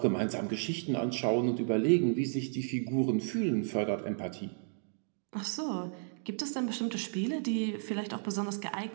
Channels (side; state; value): left; silent; digital silence